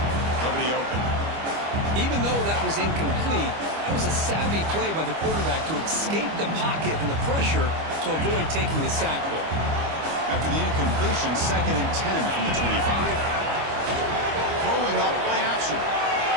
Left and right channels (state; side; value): late; left; 25 ms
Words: nobody open. Even though that was incomplete, that was a savvy play by the quarterback to escape the pocket and the pressure to avoid taking the sack ball. After the incompletion, 2nd and 10 from the 25. Throwing up play action.